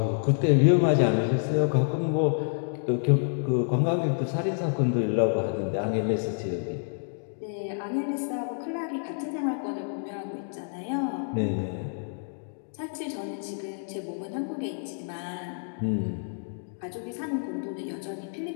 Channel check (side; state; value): right; silent; digital silence